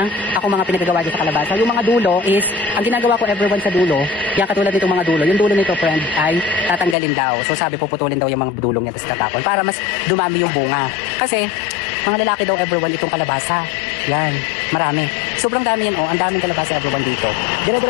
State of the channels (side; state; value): right; drops out; at 7.0 s